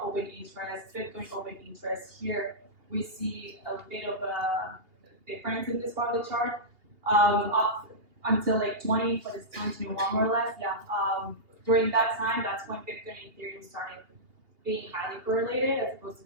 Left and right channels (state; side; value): late; left; 2.8 ms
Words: open interest, Bitcoin open interest. Here we see a bit of a difference in this part of the chart. Up until like 2021 more or less, yeah. During that time, that's when Bitcoin and Ethereum started being highly correlated, as opposed to